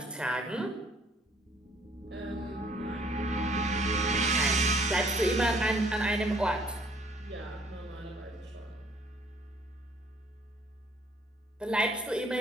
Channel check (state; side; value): normal; both; correlation 0.61